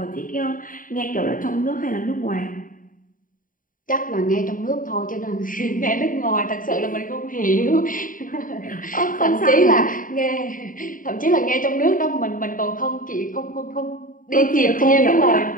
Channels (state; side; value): late; right; 0.39 ms